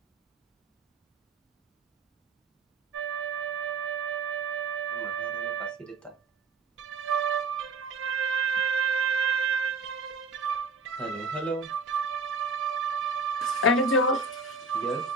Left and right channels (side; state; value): left; quieter; 3.4 dB